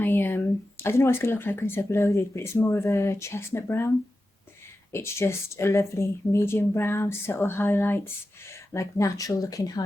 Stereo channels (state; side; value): normal; both; correlation 0.92